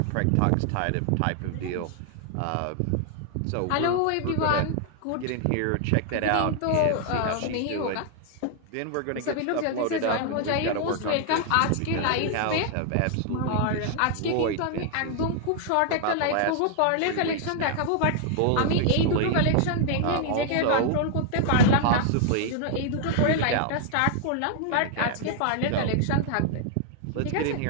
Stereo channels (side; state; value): both; different; correlation 0.00